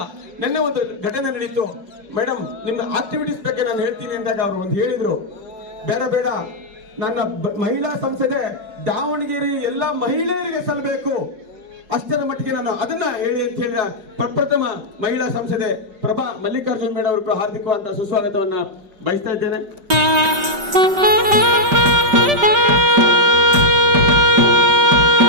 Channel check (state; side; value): late; left; 5.1 ms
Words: ನಿನ್ನೆ ಒಂದು ಘಟನೆ ನಡೀತು. ಮೇಡಮ್, ನಿಮ್ಮ ಆಕ್ಟಿವಿಟೀಸ್ ಬಗ್ಗೆ ನಾನು ಹೇಳ್ತೀನಿ ಅಂದಾಗ ಅವರು ಒಂದು ಹೇಳಿದ್ರು, ಬೇಡ ನನ್ನ ಮಹಿಳಾ ಸಂಸದೆ ದಾವಣಗೆರೆ ಎಲ್ಲ ಮಹಿಳೆಯರಿಗೆ ಸಲ್ಲಬೇಕು, ಅಷ್ಟರ ಮಟ್ಟಿಗೆ ನಾನು ಅದನ್ನ ಹೇಳಿ ಅಂತ ಹೇಳಿದ ಪ್ರಪ್ರಥಮ ಮಹಿಳಾ ಸಂಸದೆ ಪ್ರಭಾ ಮಲ್ಲಿಕಾರ್ಜುನ್ ಮೇಡಮ್ ಅವರು ಕೂಡ ಹಾರ್ದಿಕವಾದ ಸುಸ್ವಾಗತವನ್ನ ಬಯಸ್ತಾ ಇದ್ದೇನೆ.